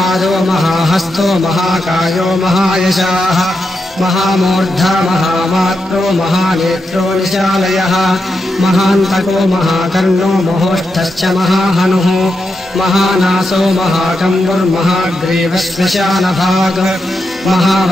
महाहस्तो महाकायो महायशाः महामूर्धा महामात्रो महानेत्रो निशालयः महान्तको महाकर्णो महोष्ठश्च महाहनुः महानासो महाकम्बुर्महाग्रीवश्मशानभाग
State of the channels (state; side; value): normal; both; correlation 0.85